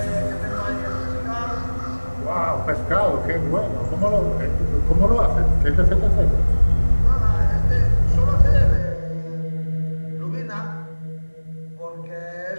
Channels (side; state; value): both; inverted; correlation -1.00